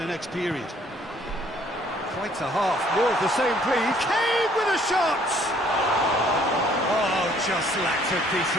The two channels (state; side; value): normal; both; correlation 0.61